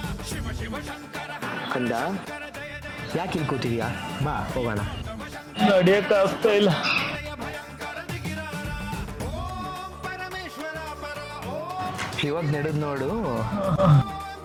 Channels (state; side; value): identical; both; correlation 1.00